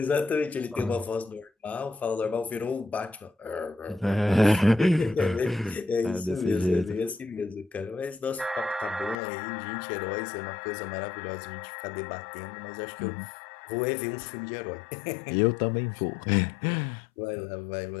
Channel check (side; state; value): right; drops out; at 9.2 s